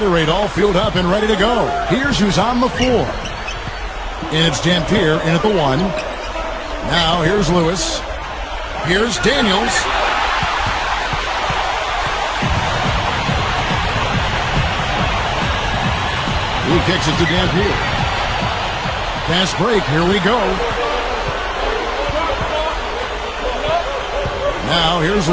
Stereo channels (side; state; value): both; identical; correlation 1.00